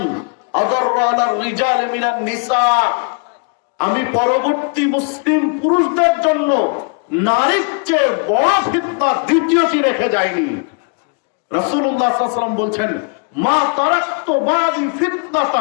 আদাররা আলার রিজাল মিনান নিসা, আমি পরবর্তী মুসলিম পুরুষদের জন্য নারীর চেয়ে বড় ফিতনা দ্বিতীয়টি রেখে যায়নি। রাসূলুল্লাহ সাল্লাল্লাহু আলাইহি ওয়াসাল্লাম বলছেন, মা তারাকতু বাদি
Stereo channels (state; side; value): quieter; right; 38.6 dB